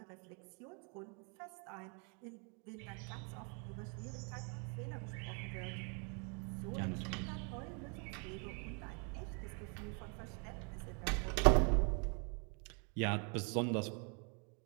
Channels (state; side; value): quieter; left; 37.1 dB